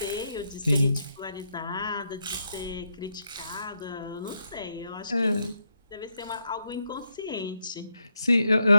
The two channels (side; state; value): both; inverted; correlation -0.81